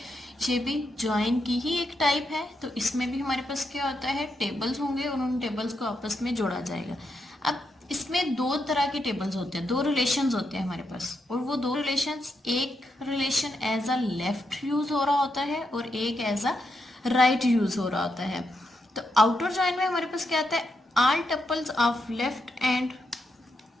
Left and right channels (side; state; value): both; normal; correlation 0.83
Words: ये भी जॉइन की ही एक टाइप है तो इसमें भी हमारे पास क्या होता है, टेबल्स होंगे और उन टेबल्स को आपस में जोड़ा जाएगा. अब इसमें दो तरह के टेबल्स होते हैं, दो रिलेशंस होते हैं हमारे पास, और वो दो रिलेशंस, एक relation as a left use हो रहा होता है और एक एज अ राइट यूज हो रहा होता है. तो आउटर जॉइन में हमारे पास क्या आता है, all tuples of left and